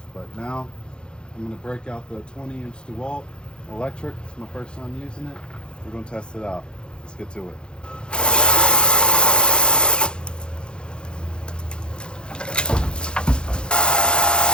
But now I'm gonna break out the 20-inch DeWalt electric. It's my first time using it. We're gonna test it out. Let's get to it.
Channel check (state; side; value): late; right; 0.051 ms